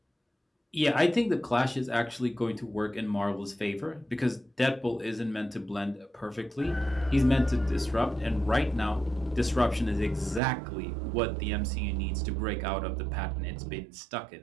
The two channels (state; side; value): drops out; left; at 10.4 s